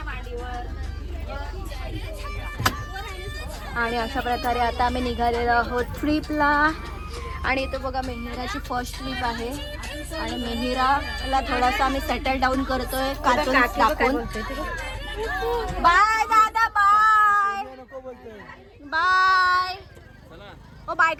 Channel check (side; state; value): both; identical; correlation 1.00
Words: आणि अशा प्रकारे आता आम्ही निघालेलो आहोत ट्रिपला. आणि इथं बघा मेहिराची फर्स्ट ट्रिप आहे आणि मेहिराला थोडासा आम्ही सेटल डाऊन करतोय कार्टून दाखवून. बाय दादा, बाय बाय. ओ बाय